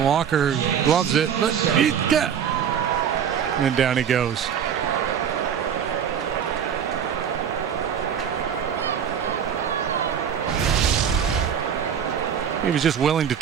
gloves it, but and down he goes. He was just willing to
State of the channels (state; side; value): quieter; left; 8.2 dB